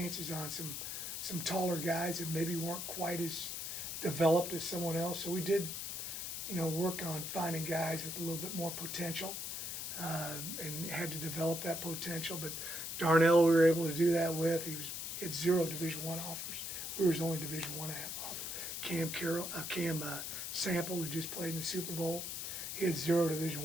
on some taller guys that maybe weren't quite as developed as someone else. So we did, work on finding guys with a little bit more potential, and had to develop that potential. But Darnell, we were able to do that with. He had 0 Division I offers. We were his only Division I offer. Cam Sample, who just played in the Super Bowl, he had 0 Division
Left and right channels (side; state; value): left; noise; hiss, 5 dB below the sound